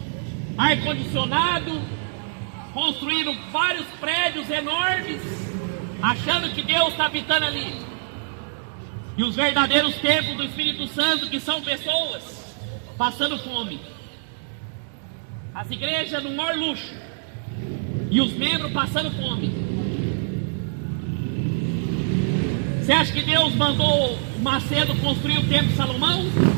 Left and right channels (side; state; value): left; silent; digital silence